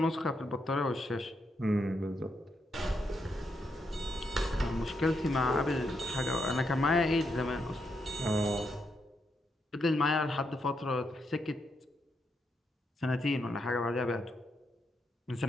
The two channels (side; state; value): both; normal; correlation 0.81